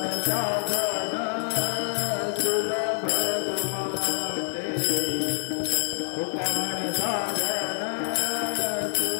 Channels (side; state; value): right; silent; digital silence